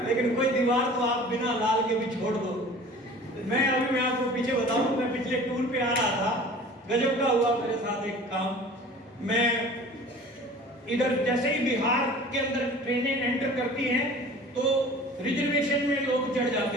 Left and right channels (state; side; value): normal; both; correlation 0.43